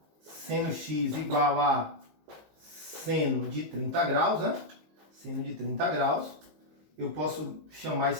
seno x igual a seno de 30 graus, né? Seno de 30 graus. Eu posso chamar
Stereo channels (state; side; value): late; left; 19 ms